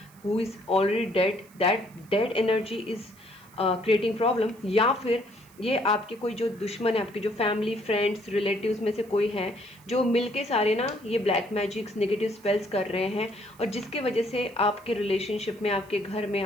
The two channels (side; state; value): right; noise; hiss, 27 dB below the sound